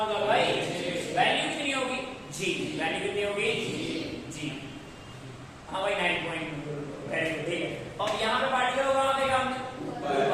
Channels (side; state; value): both; identical; correlation 1.00